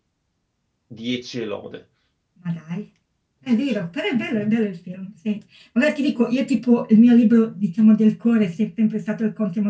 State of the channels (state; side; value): identical; both; correlation 1.00